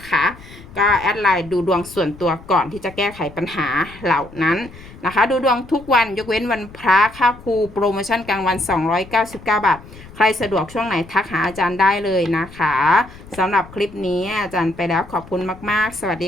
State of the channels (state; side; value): noise; left; rumble, 19 dB below the sound